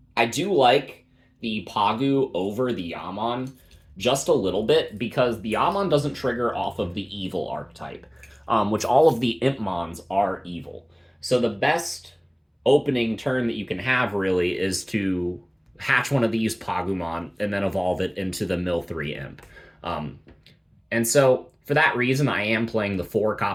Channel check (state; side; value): identical; both; correlation 1.00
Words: I do like the Pagu over the Yammon just a little bit, because the Yammon doesn't trigger off of the evil archetype, which all of the Impmons are evil. So the best opening turn that you can have, really, is to hatch one of these Pagumon and then evolve it into the mill 3 Imp. And so, for that reason, I am playing the 4